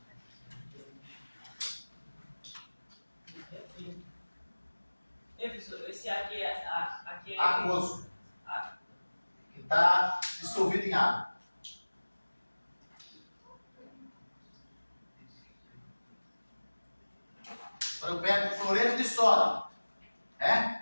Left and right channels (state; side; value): inverted; both; correlation -1.00